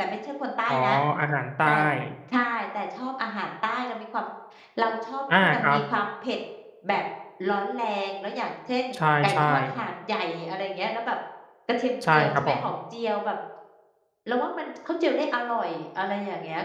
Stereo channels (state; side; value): identical; both; correlation 1.00